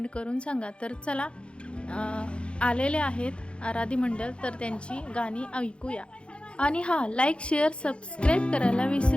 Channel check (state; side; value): late; right; 0.057 ms